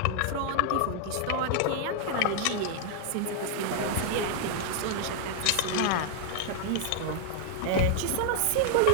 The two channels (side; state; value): both; different; correlation 0.00